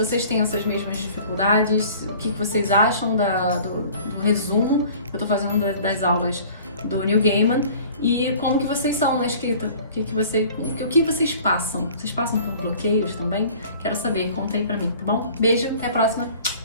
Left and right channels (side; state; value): both; inverted; correlation -0.48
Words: têm essas mesmas dificuldades, o que vocês acham do resumo que eu estou fazendo das aulas do Neil Gaiman. E como que vocês são na escrita? O que vocês passam? Vocês passam por bloqueios também? Quero saber, conta aí pra mim, tá bom? Beijo, até a próxima.